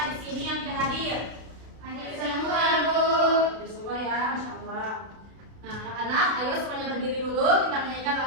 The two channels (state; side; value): late; left; 32 ms